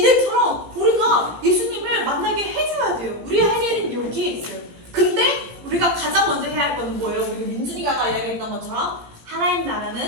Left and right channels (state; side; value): late; left; 17 ms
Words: 우리가 예수님을 만나게 해줘야 돼요. 우리 할 일은 여기에 있어요. 근데 우리가 가장 먼저 해야 할 거는 뭐예요? 우리 민준이가 이야기했던 것처럼 하나님